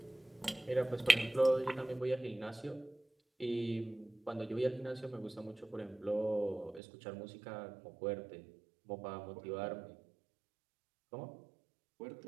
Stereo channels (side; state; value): left; drops out; at 6.8 s